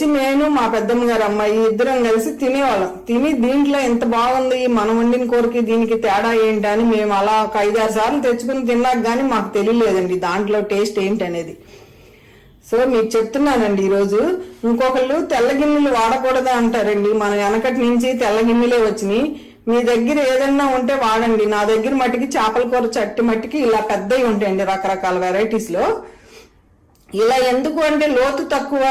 నేను మా పెద్దమ్మ గారు అమ్మాయి ఇద్దరం కలిసి తినేవాళ్ళం. తిని దీంట్లో ఎంత బాగుంది, మనం వండిన కూరకి దీనికి తేడా ఏంటి అని మేము అలా ఒక 5-6 సార్లు తెచ్చుకుని తిన్నాక గానీ మాకు తెలియలేదండి దాంట్లో టేస్ట్ ఏంటి అనేది. సో మీకు చెప్తున్నానండి ఈరోజు. ఇంకొకళ్ళు తెల్ల గిన్నెలు వాడకూడదా అంటారండి. మన వెనకటి నుంచి తెల్ల గిన్నెలే వచ్చినాయి. మీ దగ్గర ఏదన్నా ఉంటే వాడండి. నా దగ్గర మట్టికి చేపల కూర చట్టి మట్టికి ఇలా పెద్దవి ఉంటాయండి రకరకాల వెరైటీస్ లో. ఇలా ఎందుకు అంటే లోతు తక్కువ,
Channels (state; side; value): identical; both; correlation 1.00